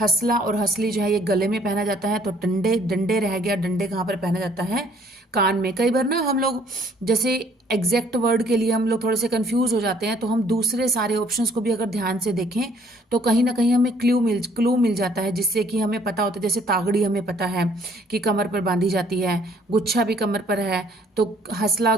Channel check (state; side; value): normal; both; correlation 0.61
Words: और हसली जो है ये गले में पहना जाता है। तो डंडे, डंडे रह गया, डंडे कहाँ पर पहना जाता है? कान में। कई बार ना हम लोग जैसे एग्जैक्ट वर्ड के लिए हम लोग थोड़े से कंफ्यूज हो जाते हैं, तो हम दूसरे सारे ऑप्शंस को भी अगर ध्यान से देखें तो कहीं ना कहीं हमें क्लू मिल जाता है, जिससे कि हमें पता होता है। जैसे तागड़ी हमें पता है कि कमर पर बांधी जाती है, गुच्छा भी कमर पर है, तो हसला